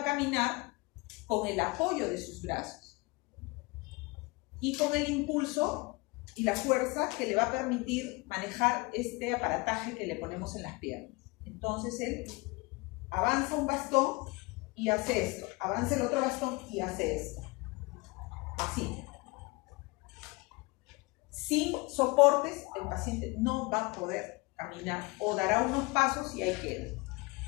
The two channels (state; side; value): quieter; right; 26.1 dB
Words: caminar con el apoyo de sus brazos y con el impulso y la fuerza que le va a permitir manejar este aparataje que le ponemos en las piernas. Entonces él avanza un bastón y hace esto, avanza el otro bastón y hace esto. Así. Sin soportes, el paciente no va a poder caminar o dará unos pasos y ahí queda.